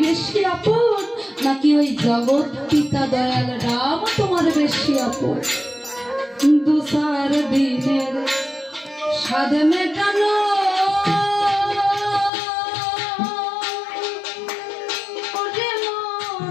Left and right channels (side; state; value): right; drops out; at 12.3 s